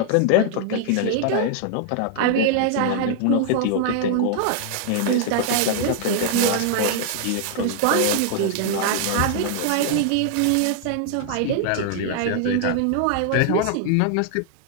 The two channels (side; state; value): both; different; correlation 0.00